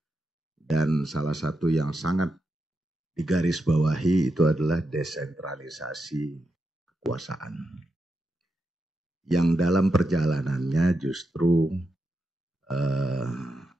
Dan salah satu yang sangat digarisbawahi itu adalah desentralisasi kekuasaan. Yang dalam perjalanannya justru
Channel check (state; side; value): normal; both; correlation 0.86